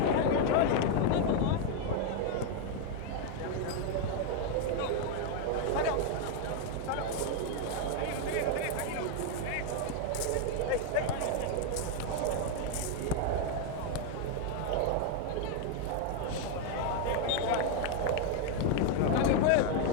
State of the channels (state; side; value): different; both; correlation 0.01